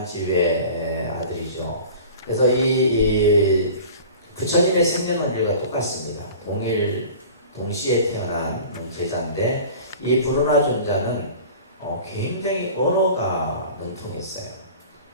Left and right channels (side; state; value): both; inverted; correlation -0.41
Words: 집의 아들이죠. 그래서 이 부처님의 생년월일과 똑같습니다. 동시에 태어난 제자인데 이 부르나 존자는 굉장히 언어가 능통했어요.